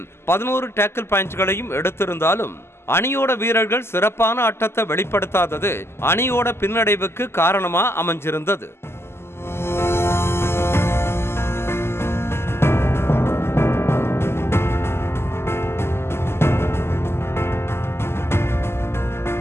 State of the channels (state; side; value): late; right; 0.12 ms